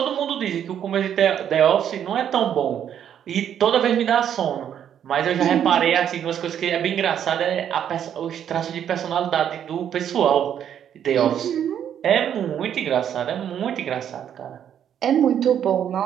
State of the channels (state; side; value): quieter; left; 9.4 dB